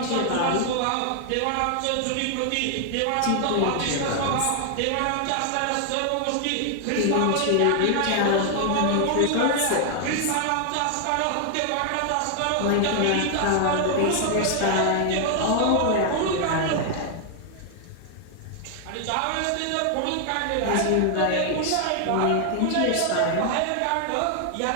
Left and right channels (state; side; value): different; both; correlation 0.00